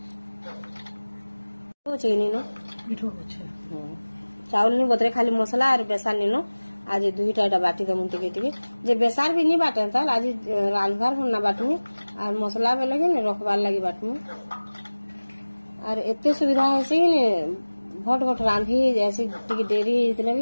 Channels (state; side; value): inverted; both; correlation -1.00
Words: चीनी नो मिठो छै चावल नहीं बतरे खाली मसला और बेसार नीनो आज 2टा बाटी दे मुंती के जे बेसार भी नहीं बाटे त आज रांधबार होना बाटमी और मसला में लगे ने रखबार लगी बाटमी और एते सुविधा है से ने भट रांधी जैसे टिके देरी इतने